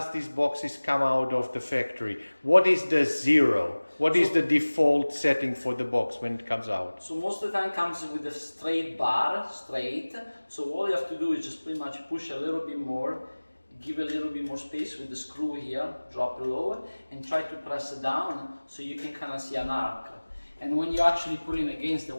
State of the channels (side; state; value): both; inverted; correlation -1.00